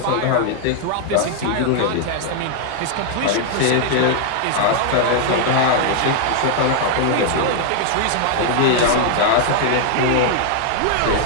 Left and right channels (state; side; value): different; both; correlation 0.00